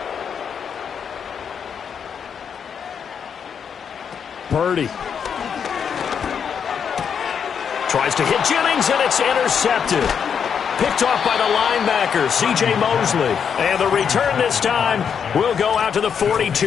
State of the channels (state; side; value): quieter; right; 7.2 dB